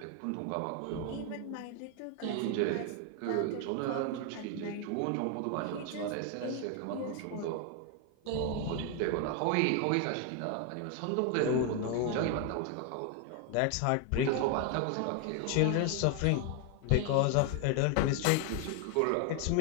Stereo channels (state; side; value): different; both; correlation 0.01